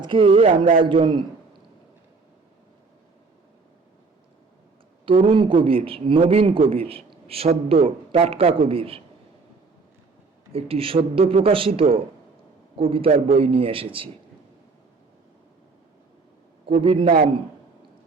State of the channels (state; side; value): quieter; left; 4.2 dB